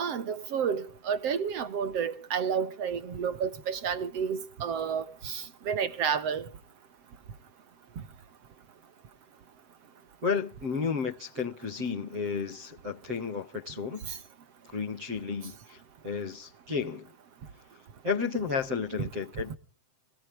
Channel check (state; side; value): late; left; 7.7 ms